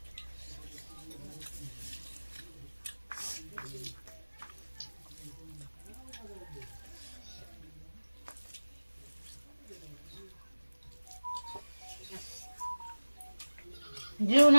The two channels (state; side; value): inverted; both; correlation -1.00